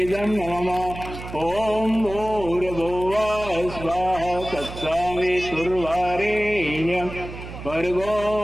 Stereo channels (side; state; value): right; noise; hum, 11 dB below the sound